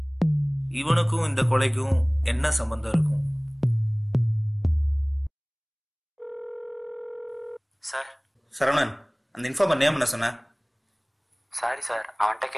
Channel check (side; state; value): both; identical; correlation 1.00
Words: இவனுக்கும் இந்த கொலைக்கும் என்ன சம்பந்தம் இருக்கும்? சார் சரவணன், அந்த இன்ஃபார்மர் நேம் என்ன சொன்ன? சாரி சார், அவன்கிட்ட